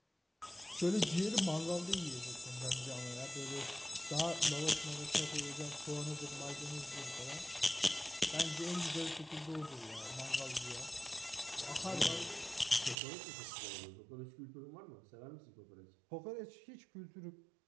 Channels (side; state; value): left; drops out; at 13.0 s